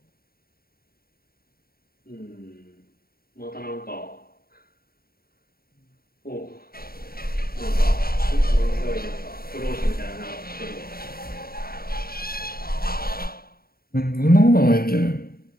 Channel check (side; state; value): right; late; 0.43 ms